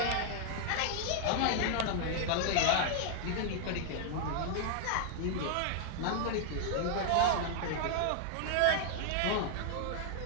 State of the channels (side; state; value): both; different; correlation 0.00